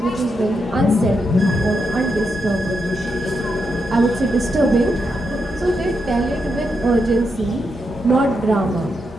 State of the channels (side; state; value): both; normal; correlation 0.83